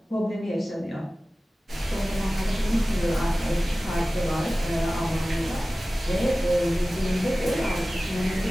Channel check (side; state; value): both; normal; correlation 0.96